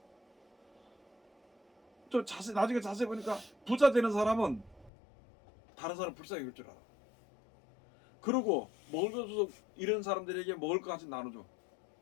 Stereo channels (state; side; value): drops out; right; at 4.9 s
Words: 또 나중에 자세히 보니까 부자 되는 사람은 다른 사람 불쌍히 볼 줄 알아. 그리고 먹을 것 없어서 이런 사람들에게 먹을 것 같이 나눠줘.